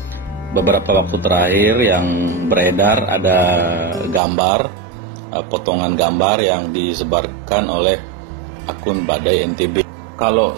beberapa waktu terakhir yang beredar. Ada gambar, potongan gambar yang disebarkan oleh akun Badai NTB.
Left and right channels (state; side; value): drops out; left; at 4.2 s